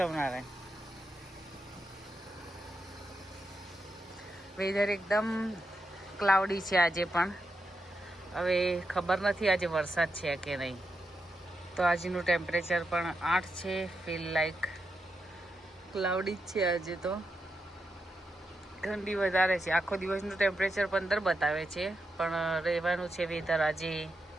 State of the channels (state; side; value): normal; both; correlation 0.86